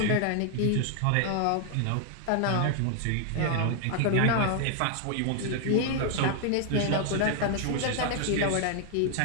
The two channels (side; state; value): both; different; correlation 0.00